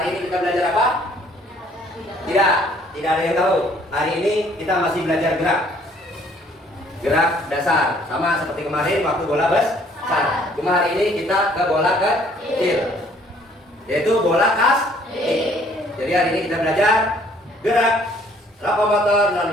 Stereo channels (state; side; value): normal; both; correlation 0.60